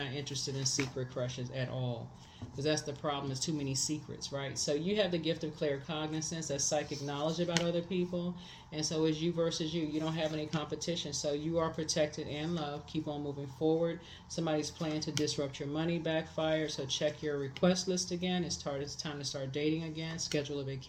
interested in secret crushes at all. Because that's the problem, is too many secrets, right? So you have the gift of claircognizance, that's psychic knowledge about other people. And so it's you versus you. You don't have any competition. So you are protected and loved. Keep on moving forward. Somebody's plan to disrupt your money backfired. So check your request list again. It's time to start dating again. Schedule a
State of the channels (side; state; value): both; identical; correlation 1.00